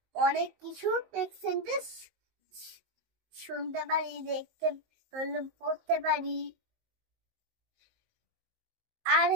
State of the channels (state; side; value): late; left; 19 ms